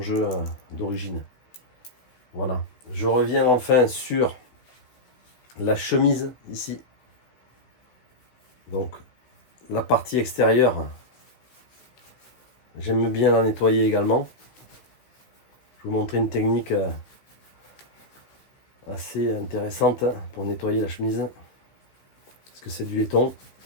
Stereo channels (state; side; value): late; right; 15 ms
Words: jeu d'origine. Voilà. Je reviens enfin sur la chemise ici. Donc, la partie extérieure, j'aime bien la nettoyer également. Je vais vous montrer une technique assez intéressante pour nettoyer la chemise. Parce que c'est du laiton.